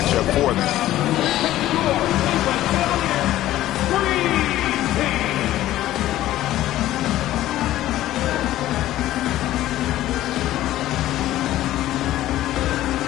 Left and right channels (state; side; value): quieter; right; 14.4 dB